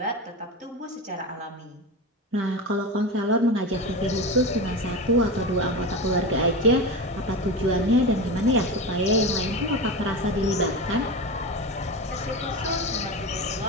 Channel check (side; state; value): both; normal; correlation 0.23